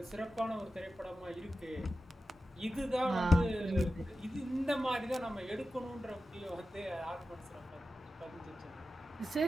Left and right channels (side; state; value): both; normal; correlation 0.92